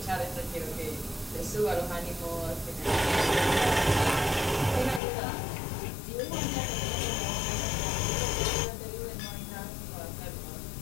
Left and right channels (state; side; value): drops out; right; at 5.0 s